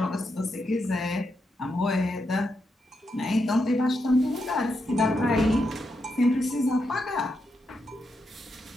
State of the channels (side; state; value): both; normal; correlation 0.83